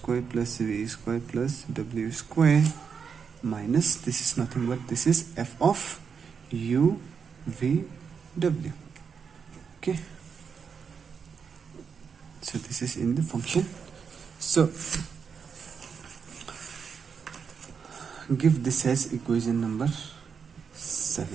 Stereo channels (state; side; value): quieter; left; 6.3 dB